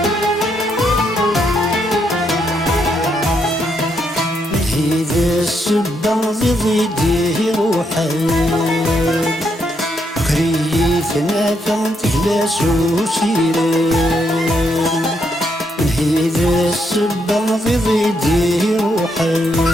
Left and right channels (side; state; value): both; normal; correlation 0.77